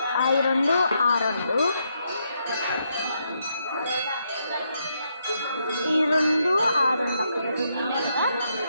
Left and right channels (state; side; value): inverted; both; correlation -0.78